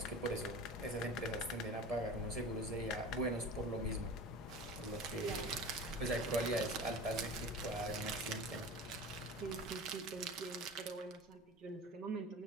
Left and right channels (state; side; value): normal; both; correlation 0.35